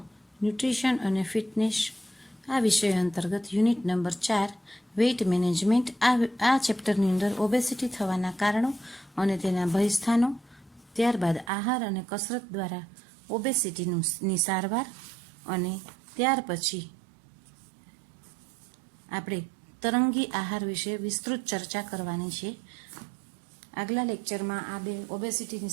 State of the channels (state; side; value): drops out; left; at 11.5 s